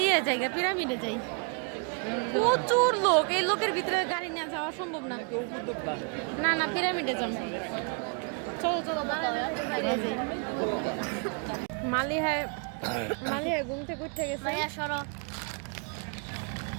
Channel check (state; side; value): quieter; left; 35.7 dB